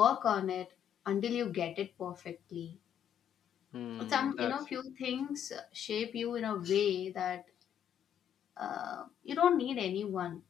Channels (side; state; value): right; quieter; 9.5 dB